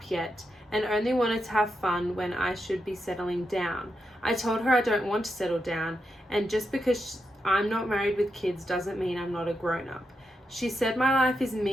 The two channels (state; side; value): normal; both; correlation 0.85